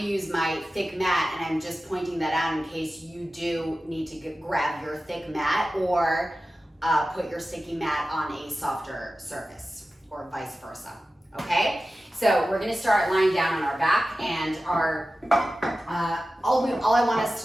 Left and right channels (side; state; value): both; normal; correlation 0.94